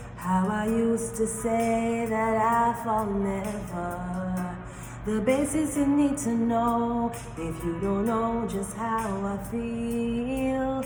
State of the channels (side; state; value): both; identical; correlation 1.00